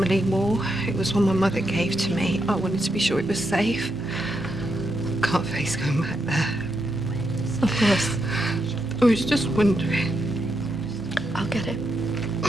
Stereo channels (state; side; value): normal; both; correlation 0.82